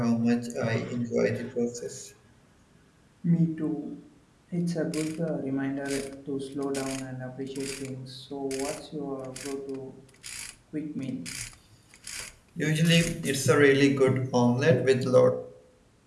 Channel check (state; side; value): identical; both; correlation 1.00